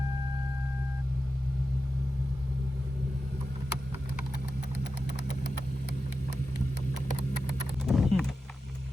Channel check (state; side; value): normal; both; correlation 0.91